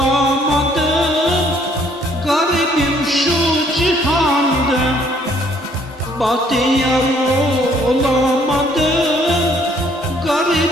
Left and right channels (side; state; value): both; normal; correlation 0.63